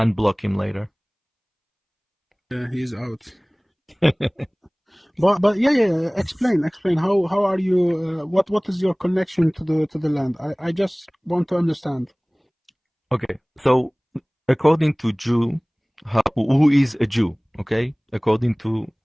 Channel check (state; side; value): identical; both; correlation 1.00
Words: him later. Yeah, he's out. But yeah. Explain. How are you? What is your connection to the land? I just want to understand. Okay, so according to Jew, who is a Jew? Okay, according to